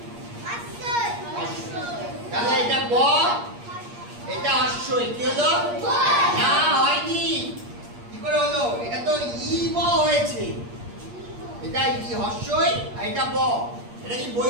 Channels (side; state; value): left; late; 8.5 ms